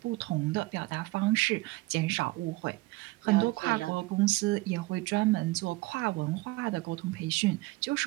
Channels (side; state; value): left; quieter; 21.1 dB